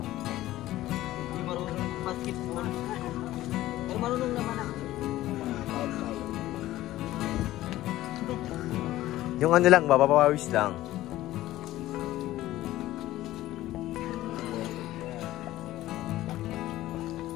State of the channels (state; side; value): quieter; right; 15.4 dB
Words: marunong basketball. Pero marunong naman ako. Yung ano lang, mapapawis lang.